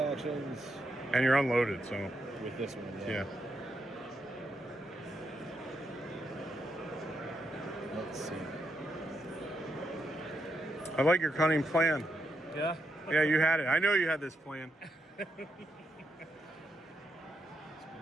And you're unloaded, so with this one. yeah. Let's see. I like your cunning plan. Yeah. Yeah, you had it. I know you had this plan.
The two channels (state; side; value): normal; both; correlation 0.82